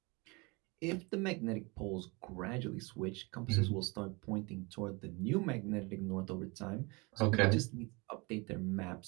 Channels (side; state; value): left; quieter; 27.4 dB